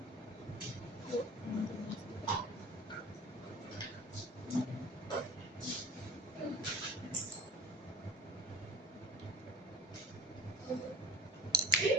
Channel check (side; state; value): both; normal; correlation 0.40